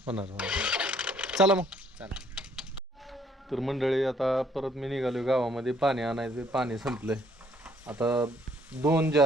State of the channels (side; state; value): both; normal; correlation 0.64